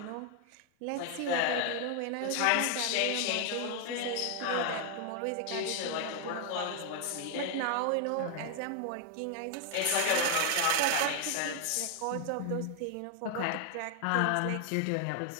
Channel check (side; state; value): both; different; correlation 0.00